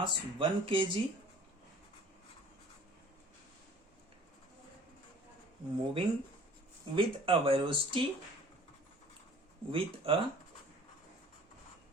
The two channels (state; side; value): normal; both; correlation 0.50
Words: 1 kg moving with a velocity